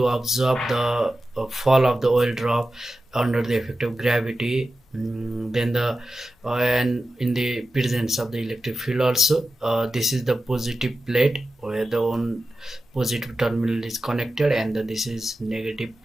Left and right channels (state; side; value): normal; both; correlation 0.92